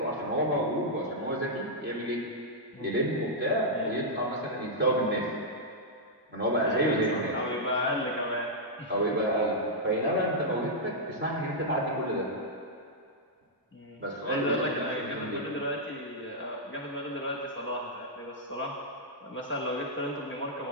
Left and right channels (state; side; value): normal; both; correlation -0.07